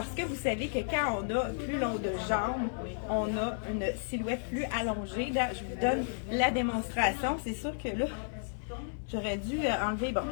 que vous savez que quand on a plus long de jambes, on a une silhouette plus allongée. Là, je vous donne la démonstration. C'est sûr que là, j'aurais dû enlever, bon,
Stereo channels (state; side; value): silent; right; digital silence